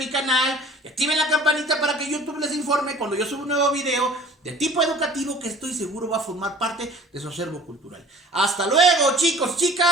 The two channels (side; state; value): both; normal; correlation 0.47